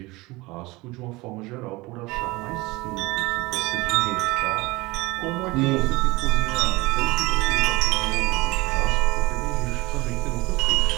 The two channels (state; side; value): quieter; left; 22.1 dB